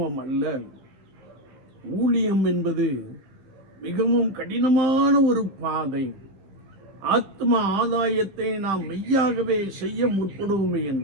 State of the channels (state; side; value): late; left; 15 ms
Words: அல்ல. ஊழியம் என்பது மிகவும் கடினமான ஒரு பாதை. ஆத்ம ஆதாயத்தை நாம் மெய்யாகவே செய்ய முற்படுவோமே